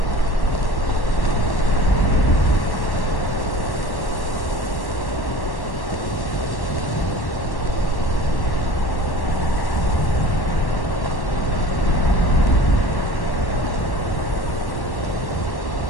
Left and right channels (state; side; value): late; right; 1.1 ms